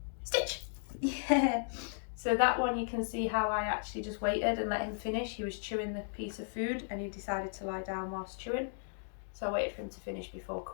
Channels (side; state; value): right; silent; digital silence